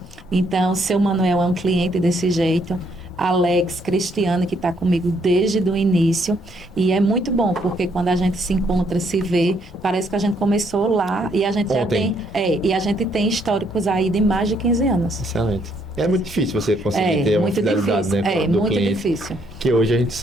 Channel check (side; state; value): both; normal; correlation 0.70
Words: Então, seu Manuel é um cliente desse jeito. Alex, Cristiano, que está comigo desde o início. E é muito bom, porque quando a gente se encontra, se vê, parece que a gente começou lá e a gente já tem... e a gente tem históricos aí de mais de 15 anos. Excelente. É muito difícil você conseguir ter uma fidelidade, difícil, né, do muito cliente. Difícil. Que hoje a